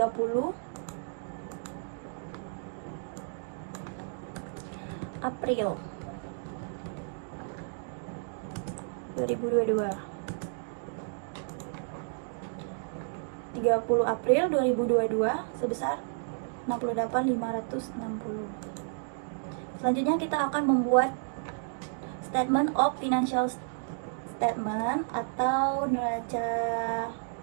April 2022. 30 April 2022 sebesar 68.560. Selanjutnya kita akan membuat statement of financial statement atau neraca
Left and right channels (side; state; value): left; silent; digital silence